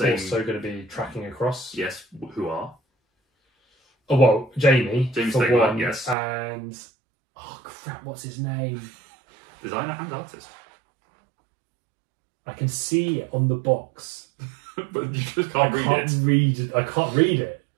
Also going to be tracking across. Yes, who are? Oh, well, Jamie for Stegmaier, one. yes. And... Oh, crap, what's his name? Designer and artist. I can see it on the box. But you just can't read it. I can't read it.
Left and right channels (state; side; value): drops out; left; at 6.2 s